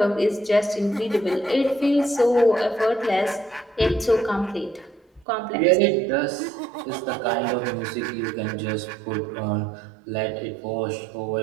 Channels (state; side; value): drops out; left; at 5.2 s